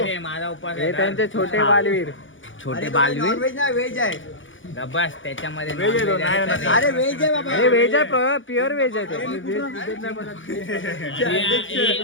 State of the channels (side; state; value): right; late; 0.56 ms